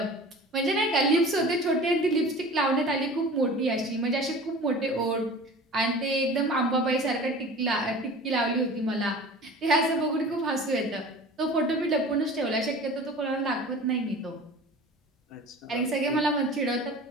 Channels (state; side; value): normal; both; correlation 0.40